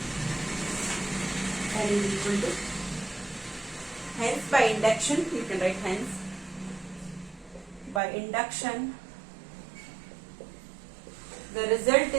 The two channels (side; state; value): left; drops out; at 8.0 s